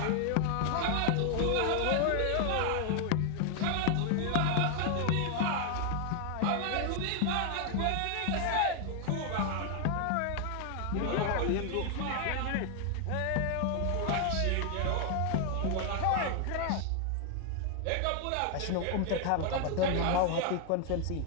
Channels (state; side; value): different; both; correlation 0.00